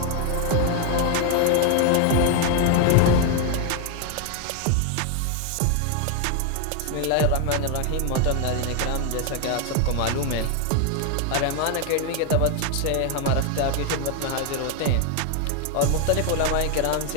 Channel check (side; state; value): both; different; correlation 0.01